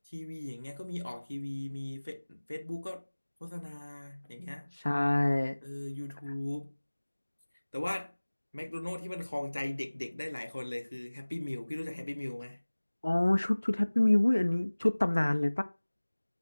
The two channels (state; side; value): inverted; both; correlation -1.00